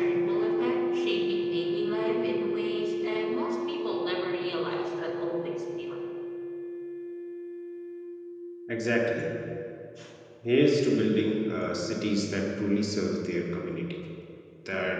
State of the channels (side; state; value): both; identical; correlation 1.00